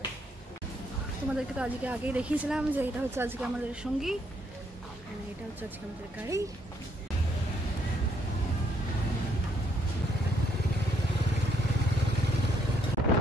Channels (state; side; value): normal; both; correlation 0.71